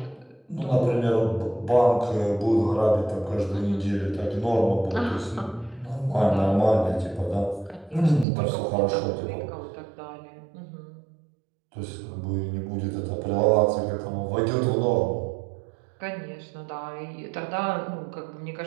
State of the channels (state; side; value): drops out; left; at 8.2 s